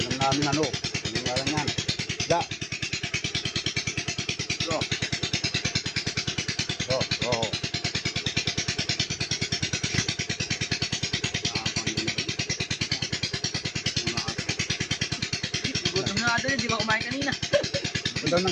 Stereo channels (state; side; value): identical; both; correlation 1.00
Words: namin ano. Ano nga lang yan. Da. Oh. Madali, di ba kumain kanina? Ito daw ng